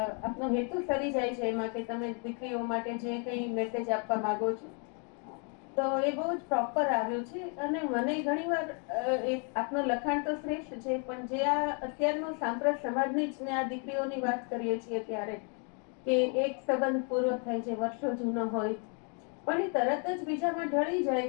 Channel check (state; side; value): quieter; right; 39.1 dB